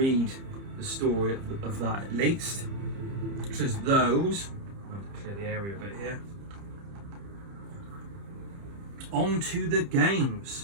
the story of that at least. It says those. I'll clear the area a bit here. On to the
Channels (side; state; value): left; late; 30 ms